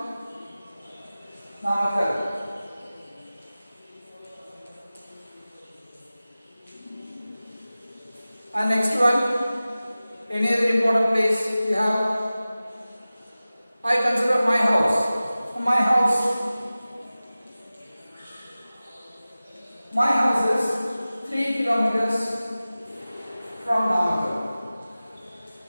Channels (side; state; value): both; inverted; correlation -0.96